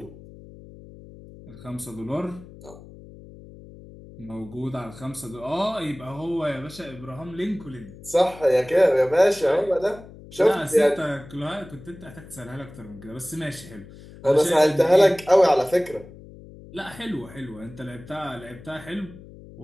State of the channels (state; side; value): noise; left; hum, 18 dB below the sound